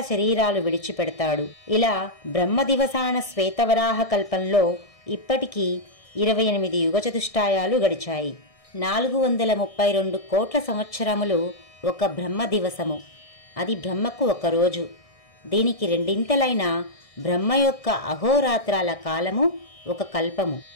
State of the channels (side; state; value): right; late; 1.6 ms